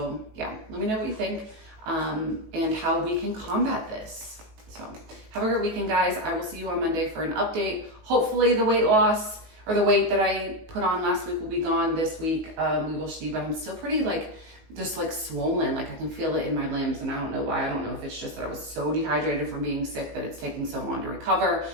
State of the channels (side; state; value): left; late; 19 ms